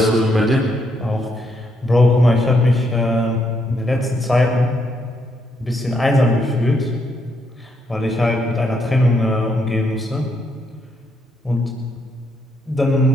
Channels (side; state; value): both; normal; correlation 0.76